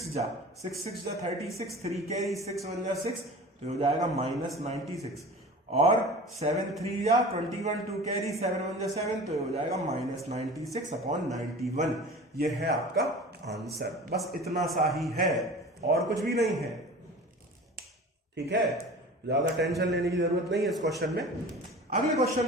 जा 36, 3 कैरी 6 1 जा 6, तो हो जाएगा -96, और 7 3 जा 21, 2 कैरी 7 1 जा 7, तो हो जाएगा -96/91। ये है आपका आंसर। बस इतना सा ही है और कुछ भी नहीं है। ठीक है, ज्यादा टेंशन लेने की जरूरत नहीं है इस क्वेश्चन में। अगले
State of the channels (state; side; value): normal; both; correlation 0.38